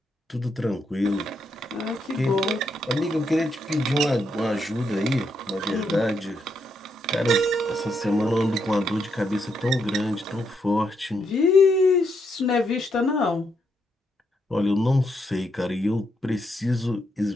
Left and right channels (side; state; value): both; normal; correlation 0.79